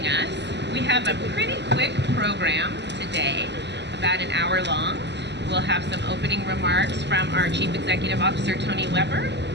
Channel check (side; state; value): left; late; 0.50 ms